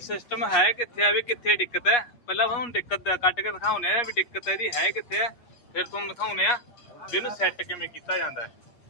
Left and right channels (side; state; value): right; late; 8.4 ms